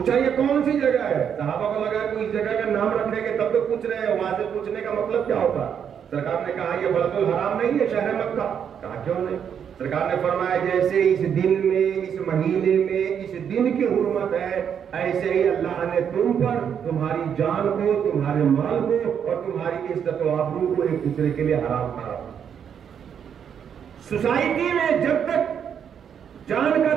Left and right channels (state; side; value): quieter; left; 8.0 dB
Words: یہ کون سی جگہ ہے؟ صحابہ کو لگا کوئی اس جگہ کا نام رکھیں گے تب تو پوچھ رہے ہیں، وہاں سے پوچھنے کا مطلب کیا ہوتا؟ سرکار نے کہا یہ بلد الحرام نہیں ہے، شہر مکہ، کہا کیوں نہیں؟ سرکار نے فرمایا جیسے اس دن میں، اس مہینے میں اس دن کی حرمت ہے، ایسے ہی اللہ نے تم پر تمہاری جان کو، تمہارے مال کو اور تمہاری عزت و آبرو کو ایک دوسرے کے لیے حرام کرا۔ سوسائٹی میں جب تک جان کا